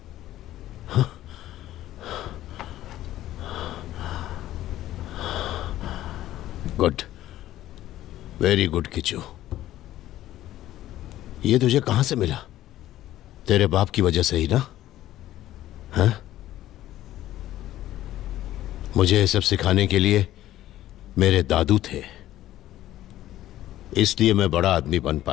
Good, very good Kishu. ये तुझे कहां से मिला? तेरे बाप की वजह से ही ना? हाँ? मुझे ये सब सिखाने के लिए मेरे दादू थे, इसलिए मैं बड़ा आदमी बन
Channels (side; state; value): right; quieter; 13.9 dB